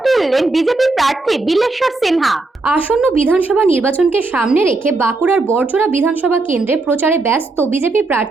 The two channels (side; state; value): left; quieter; 3.3 dB